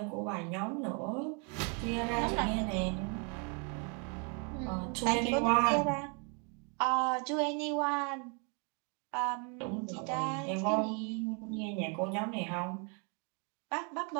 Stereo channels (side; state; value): left; quieter; 36.4 dB